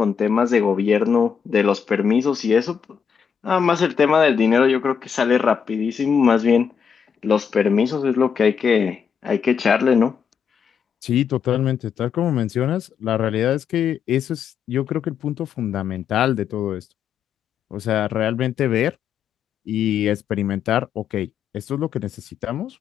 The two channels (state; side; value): quieter; right; 7.1 dB